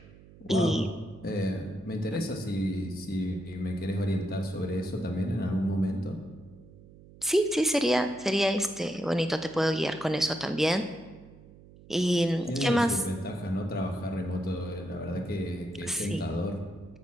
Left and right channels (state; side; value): noise; right; hum, 21 dB below the sound